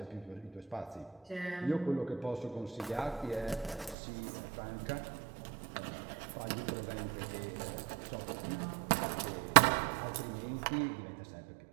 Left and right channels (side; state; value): left; drops out; at 4.0 s